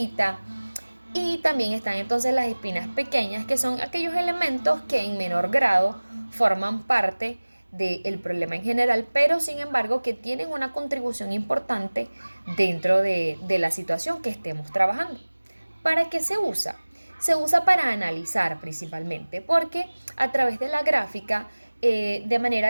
Y también están entonces las espinas pequeñas, que son aquellos elementos que en menor grado forman parte del problema en general, pero sin embargo que tienen una contribución importante dentro de la situación que estemos trabajando. ¿Para qué se usa? Se usa para analizar principalmente, porque a través de la gráfica, de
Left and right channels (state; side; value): inverted; both; correlation -1.00